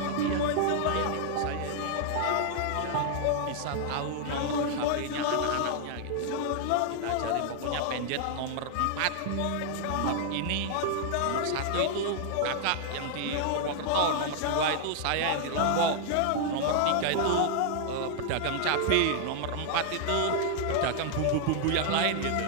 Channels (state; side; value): different; both; correlation 0.00